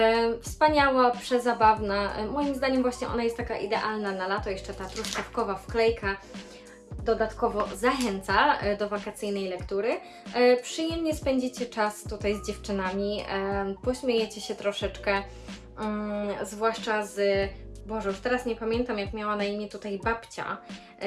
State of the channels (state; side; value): identical; both; correlation 1.00